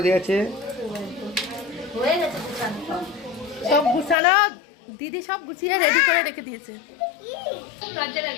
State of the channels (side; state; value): right; drops out; at 4.2 s